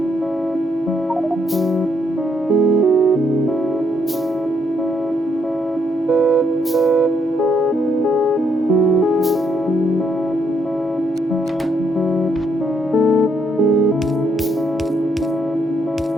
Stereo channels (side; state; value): both; normal; correlation 0.75